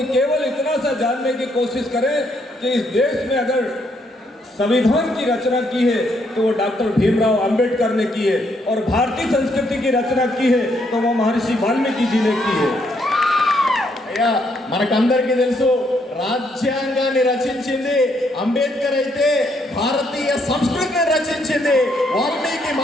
केवल इतना सा जानने की कोशिश करें कि इस देश में अगर संविधान की रचना की है तो वो डॉक्टर भीमराव अंबेडकर ने की है, और भारतीय संस्कृति की रचना की है तो वो महर्षि वाल्मीकि जी ने की है। అయ్యా, మనకందరికీ తెలుసు, రాజ్యాంగాన్ని రచించింది అంబేద్కర్ అయితే భారతీయ సంస్కృతిని రచించింది వాల్మీకి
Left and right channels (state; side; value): normal; both; correlation 0.73